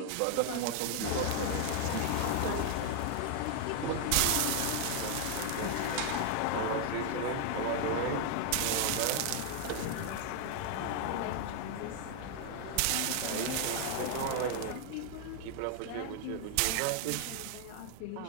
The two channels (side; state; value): both; different; correlation 0.00